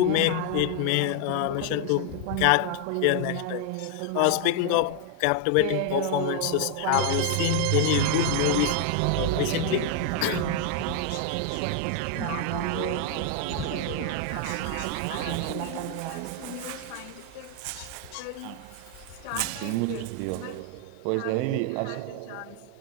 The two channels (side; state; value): both; different; correlation 0.00